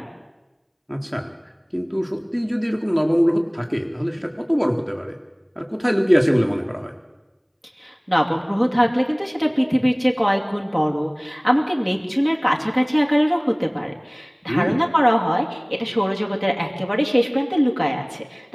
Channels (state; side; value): identical; both; correlation 1.00